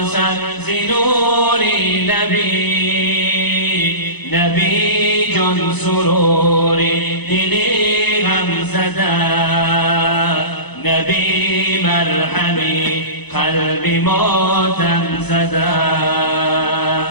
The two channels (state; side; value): late; right; 0.99 ms